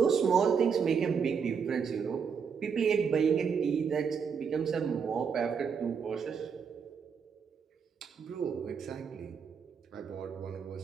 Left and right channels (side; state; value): left; quieter; 6.4 dB